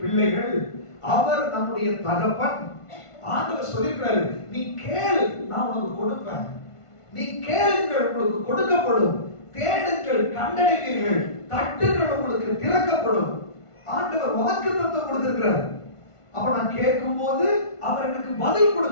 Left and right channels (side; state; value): right; late; 1.5 ms